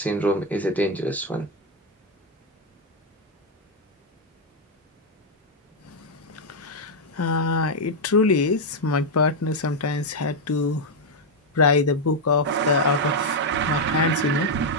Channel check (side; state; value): both; normal; correlation 0.01